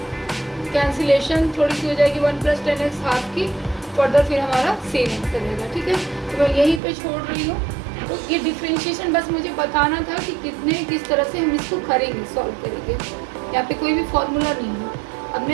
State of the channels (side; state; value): left; drops out; at 6.8 s